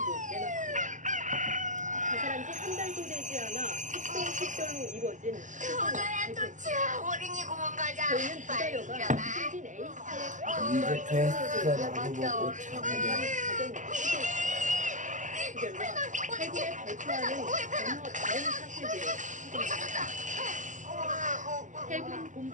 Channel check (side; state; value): left; late; 0.37 ms